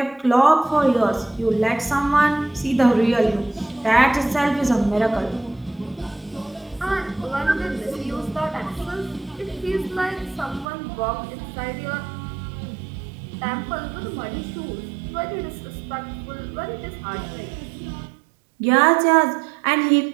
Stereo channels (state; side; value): drops out; left; at 10.7 s